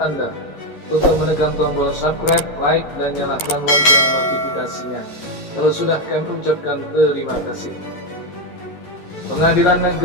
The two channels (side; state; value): right; late; 11 ms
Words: Anda untuk menekan tombol subscribe, like, dan nyalakan lonceng notifikasinya. Kalau sudah, kami ucapkan terima kasih. Pengadilan